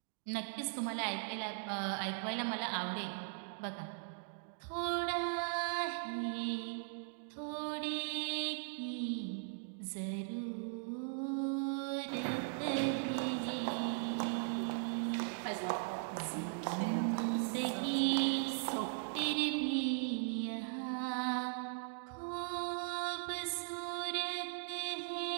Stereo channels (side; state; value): left; silent; digital silence